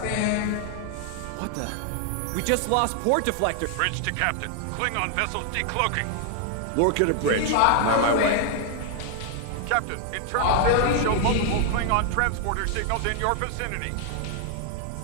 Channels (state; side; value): different; both; correlation 0.00